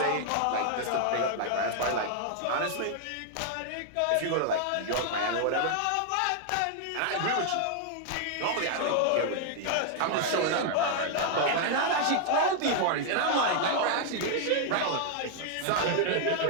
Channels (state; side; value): different; both; correlation 0.00